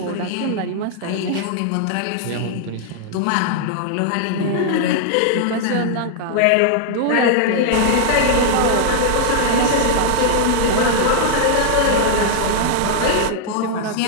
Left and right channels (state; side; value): different; both; correlation 0.00